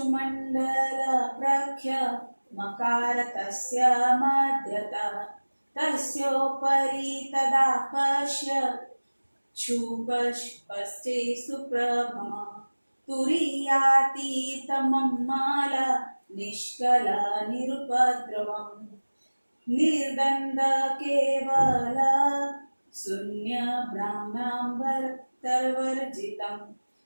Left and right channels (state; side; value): inverted; both; correlation -1.00